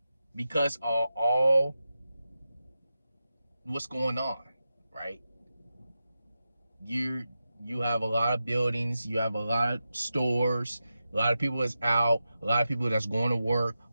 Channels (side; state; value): both; inverted; correlation -0.90